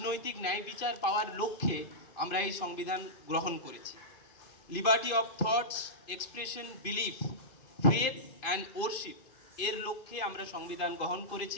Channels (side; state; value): right; late; 2.6 ms